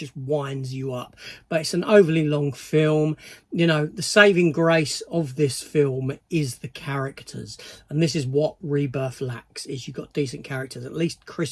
winds you up. But it's an overly long film. The saving grace of this film is the characters, and this is what Rebirth lacks. Is you've got decent characters. At least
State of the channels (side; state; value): both; identical; correlation 1.00